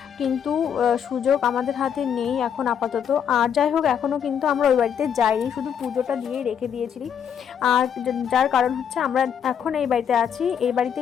কিন্তু সুযোগ আমাদের হাতে নেই এখন আপাতত। আর যাই হোক, এখনও কিন্তু আমরা ওই বাড়িতে যাইনি, শুধু পুজোটা দিয়েই রেখে দিয়েছিলি। আর যার কারণ হচ্ছে আমরা এখন এই বাড়িতে আছি। এই বাড়িতে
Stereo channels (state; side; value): quieter; right; 8.2 dB